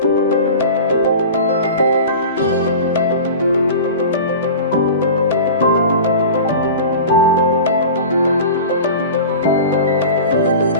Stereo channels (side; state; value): both; inverted; correlation -0.35